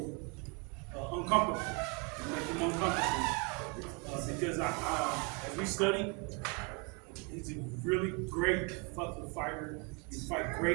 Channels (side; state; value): left; quieter; 33.0 dB